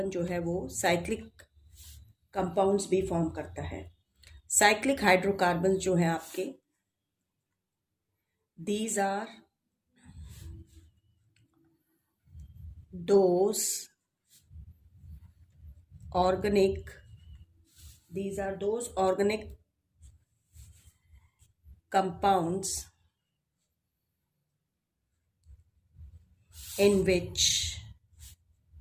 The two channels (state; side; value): identical; both; correlation 1.00